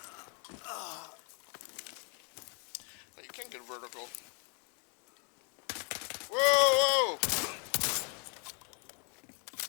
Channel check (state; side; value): quieter; right; 38.7 dB